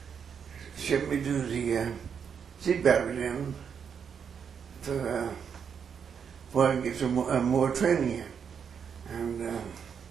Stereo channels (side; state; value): left; quieter; 7.1 dB